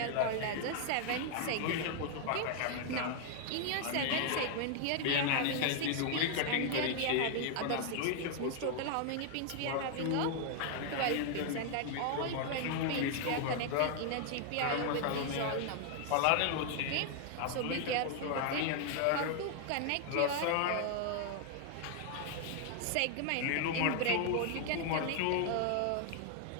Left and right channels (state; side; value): different; both; correlation 0.00